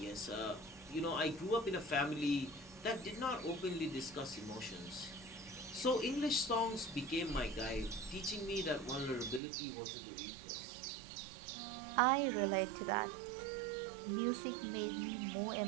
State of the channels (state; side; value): drops out; left; at 9.4 s